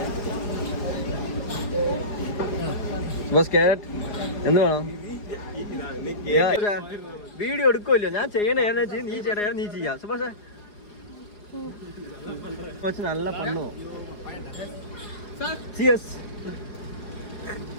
സുഭാഷ് ക്യാരറ്റ് എന്ത് വേണം? വീഡിയോ എടുക്കുമല്ലോ, ഞാൻ ചെയ്യണ നീ ചെയ്യണ നീ ചെയ്യാം. സുഭാഷ് നല്ല പണ്ണോ. ചിയേഴ്സ്.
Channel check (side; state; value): right; late; 4.8 ms